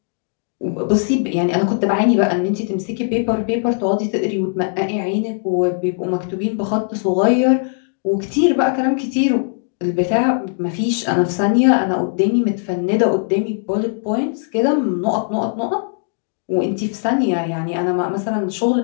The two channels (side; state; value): right; silent; digital silence